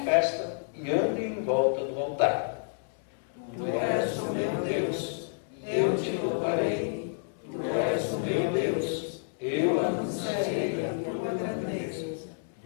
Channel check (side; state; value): right; silent; digital silence